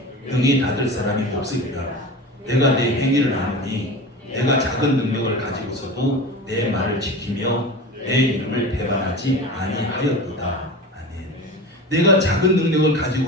능히 닫을 사람이 없으리라. 내가 내 행위를 아노니 내가 작은 능력을 가지고서도 내 말을 지키며 내 이름을 배반하지 아니하였도다. 아멘. 내가 작은 능력을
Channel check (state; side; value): normal; both; correlation 0.31